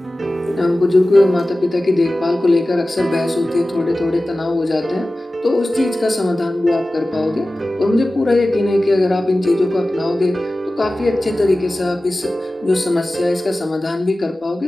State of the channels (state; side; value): normal; both; correlation 0.96